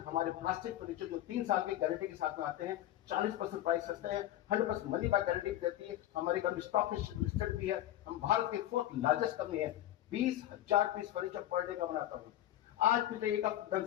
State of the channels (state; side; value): quieter; right; 13.2 dB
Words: प्लास्टिक फर्नीचर जो 3 साल की गारंटी के साथ में आते हैं, 40% प्राइस सस्ते हैं, 100% मनी बैक गारंटी देती है। हमारी कंपनी स्टॉक लिस्टेड भी है। हम भारत के 4th लार्जेस्ट कंपनी है। 20,000 पीस फर्नीचर पर डे का बनाता हूँ। आज पिछले एक हफ्ते